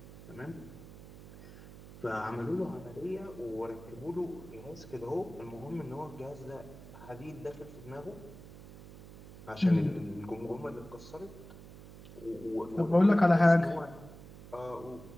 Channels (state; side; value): noise; right; hum, 17 dB below the sound